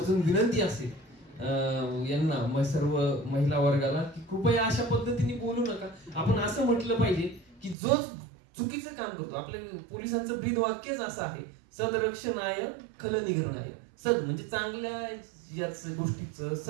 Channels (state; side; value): drops out; left; at 7.8 s